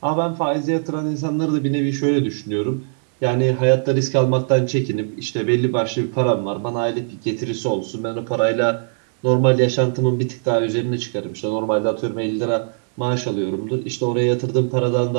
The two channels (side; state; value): left; silent; 65 dB below the other